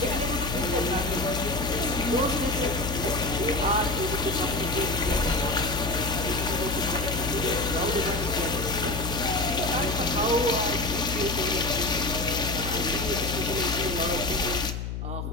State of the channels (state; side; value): noise; left; hum, 5 dB below the sound